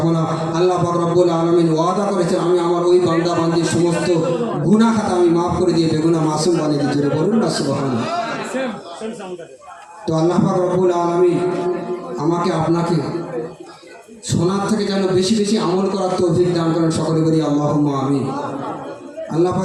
না। আল্লাহ পাক রব্বুল আলামিন ওয়াদা করেছেন, আমি আমার ওই বান্দা বান্দির সমস্ত গুনাহ খাতা আমি মাফ করে দিয়ে বেগুনাহ মাসুম বানিয়ে দিই। জোরে বলুন না সুবহানাল্লাহ। তো আল্লাহ পাক রব্বুল আলামিন আমাকে আপনাকে শোনার থেকে যেন বেশি বেশি আমল করার তৌফিক দান করেন, সকলে বলি আল্লাহুম্মা আমিন। আল্লাহ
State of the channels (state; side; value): identical; both; correlation 1.00